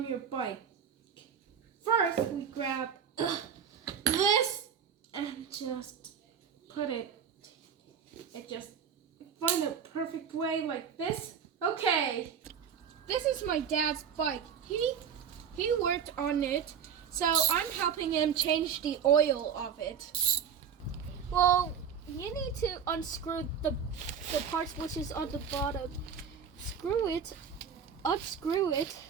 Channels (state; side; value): quieter; left; 7.4 dB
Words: your bike. First, we grab this and just put it just find a perfect way like this. Okay, this is my dad's bike. He worked on it, so I'm helping him change the oil of it. Well, you need to unscrew the parts which is on the bottom. Unscrew it,